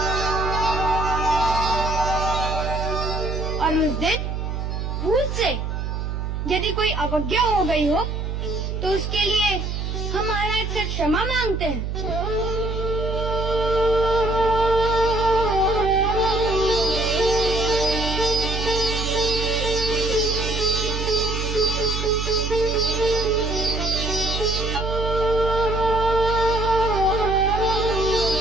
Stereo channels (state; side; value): noise; right; hum, 3 dB below the sound